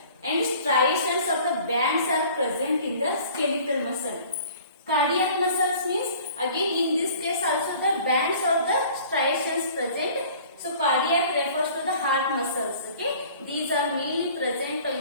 and striations of the bands are present in the skeletal muscle. Cardiac muscles means again in this case also the bands or the striations present. So cardiac refers to the heart muscles, okay? These are mainly present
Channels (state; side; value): inverted; both; correlation -0.49